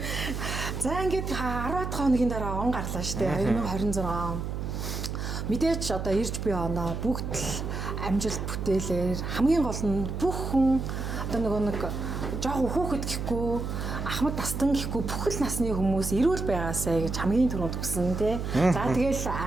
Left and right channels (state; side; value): noise; right; hum, 4 dB below the sound